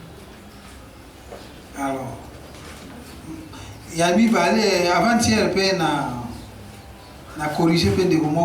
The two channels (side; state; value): both; identical; correlation 1.00